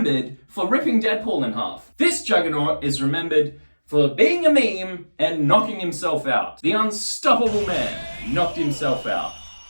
for ripping Deadpool in half. This Juggernaut is remembered for being a meme and knocking himself out. The unstoppable man knocked himself out.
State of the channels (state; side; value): inverted; both; correlation -1.00